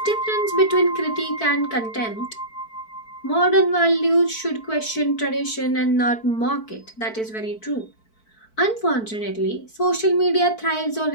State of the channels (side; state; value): right; late; 4.5 ms